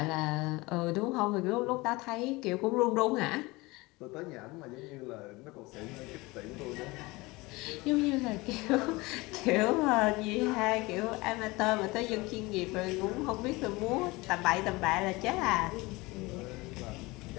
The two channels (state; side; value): quieter; right; 22.6 dB